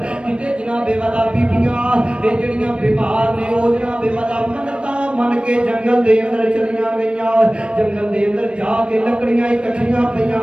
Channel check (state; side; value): late; left; 0.058 ms